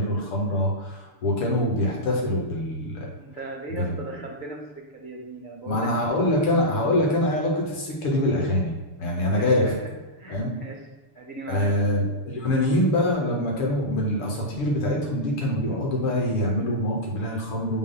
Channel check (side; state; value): right; late; 6.9 ms